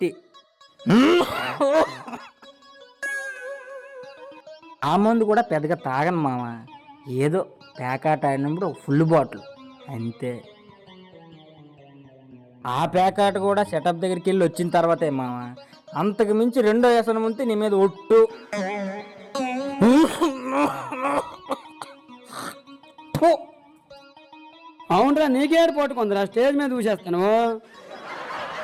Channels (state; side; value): identical; both; correlation 1.00